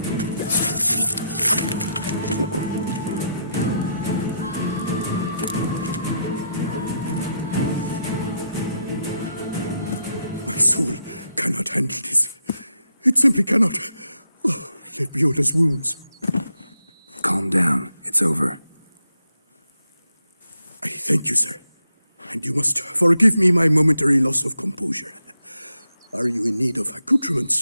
My soul cannot handle this. It simply cannot. Oh, let be Oda's wounds. Calm down. It's over. I thank you, sir. And you must forgive me my momentary loss of composure. Are you in need of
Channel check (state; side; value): inverted; both; correlation -0.81